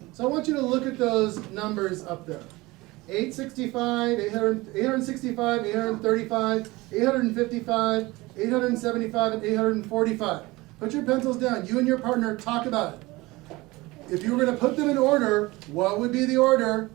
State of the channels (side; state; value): left; quieter; 21.3 dB